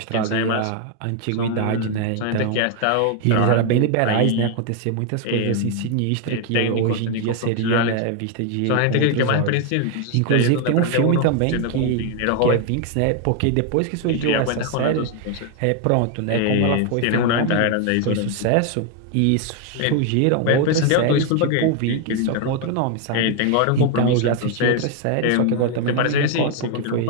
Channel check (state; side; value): different; both; correlation 0.01